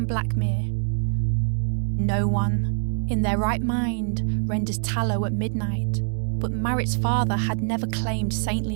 Blackmere. No one, in their right mind, renders tallow at midnight, but Marit's father had never claimed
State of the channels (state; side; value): silent; left; 62 dB below the other